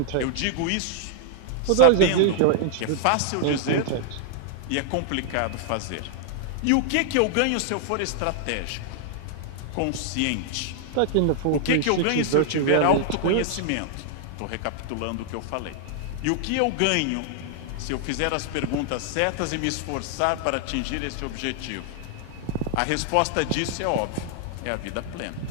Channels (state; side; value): different; both; correlation 0.00